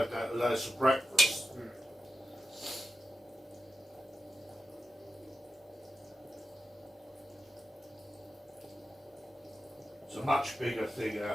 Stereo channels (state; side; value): normal; both; correlation 0.90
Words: that for breakfast. It's a much bigger thing